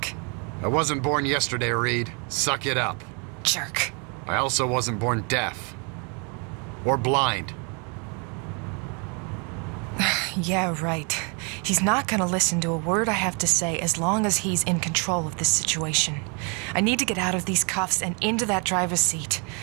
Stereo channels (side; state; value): left; quieter; 35.3 dB